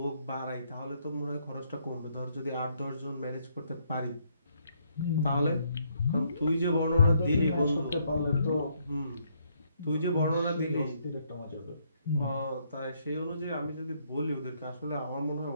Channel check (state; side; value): inverted; both; correlation -0.71